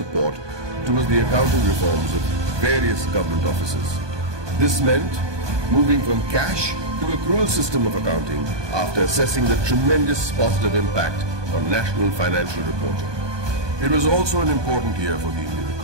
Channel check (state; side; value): late; left; 1.2 ms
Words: towards the accounting reforms of various government offices. This meant moving from cash to accrual system of accounting after assessing the tremendous positive impact on national financial reporting. It was also an important year for the Indian